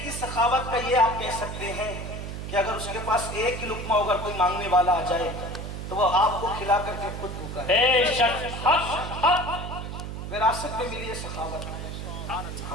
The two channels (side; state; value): right; noise; hum, 7 dB below the sound